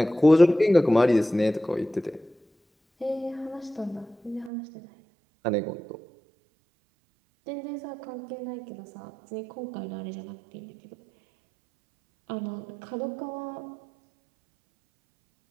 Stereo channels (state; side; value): drops out; left; at 4.5 s